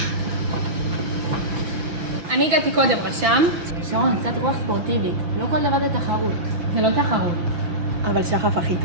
אני הגעתי קודם, רשם. שרון, קצת רוח ספורטיבית. לא כל דבר זה תחרות. זה לא תחרות. אבל שחף הכי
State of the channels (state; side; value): late; left; 6.0 ms